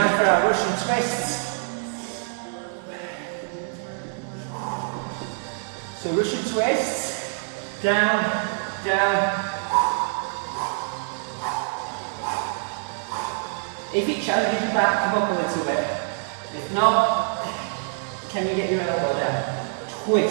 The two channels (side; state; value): left; silent; digital silence